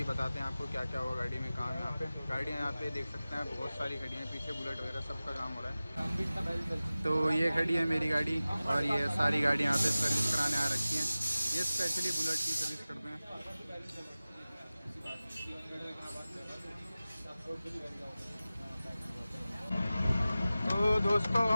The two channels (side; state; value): both; inverted; correlation -0.97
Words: बताते हैं आपको क्या क्या हुआ गाड़ी में काम। यहाँ पे गाड़ियाँ यहाँ पे देख सकते हैं, बहुत सारी खड़ी हैं पीछे, बुलेट वगैरह सबका काम हो रहा है। तो ये खड़ी है मेरी गाड़ी और ये सारी गाड़ी यहाँ पे सर्विस कराने आ रखी हैं। ये स्पेशली बुलेट की सर्विस करते हैं। तो दोस्तों